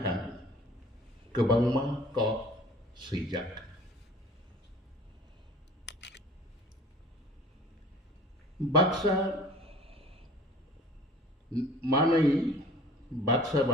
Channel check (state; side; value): normal; both; correlation 0.47